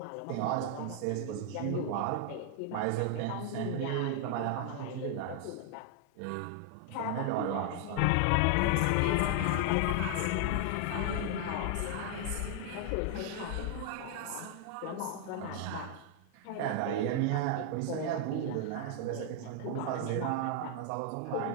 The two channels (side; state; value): both; different; correlation 0.00